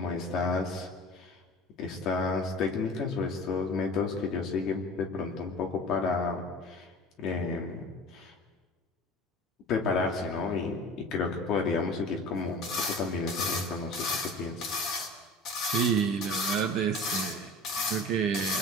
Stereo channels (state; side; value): normal; both; correlation 0.39